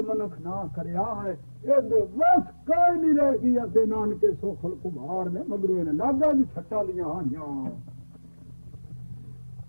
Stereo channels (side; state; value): both; inverted; correlation -1.00